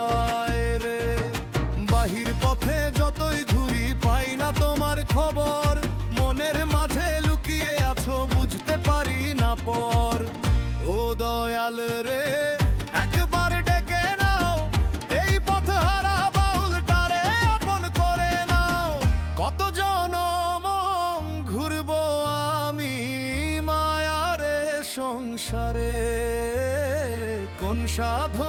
রে। বাহির পথে যতই ঘুরি পাই না তোমার খবর, মনের মাঝে লুকিয়ে আছো বুঝতে পারি না পর। ও দয়াল রে একবার ডেকে নাও, এই পথ হারা বাউলটারে আপন করে নাও। কত জনম ঘুরবো আমি মায়ারে সংসারে, কোন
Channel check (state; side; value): identical; both; correlation 1.00